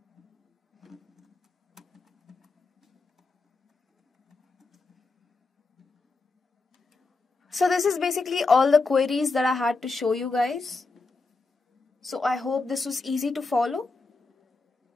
So this is basically all the queries that I had to show you guys. So I hope this was easy to follow.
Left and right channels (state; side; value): quieter; right; 3.8 dB